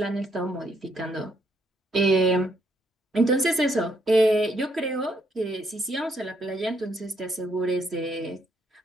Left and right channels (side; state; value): both; normal; correlation 0.73